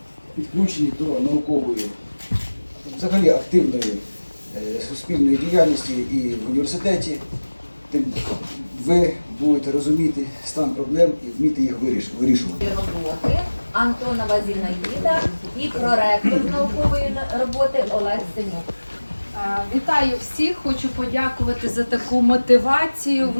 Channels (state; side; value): inverted; both; correlation -1.00